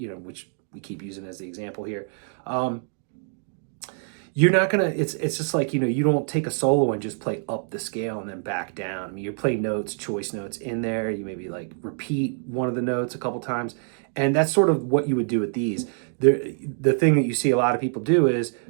we keep using as the example here. You're not gonna, it's just like, you don't take a solo and just play up the scale and then back down. I mean, you play notes, choice notes in there. You maybe like repeat one of the notes a couple times. And that's sort of what you would do with these. The thing that you see a lot of people do is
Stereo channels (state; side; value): silent; left; 61 dB below the other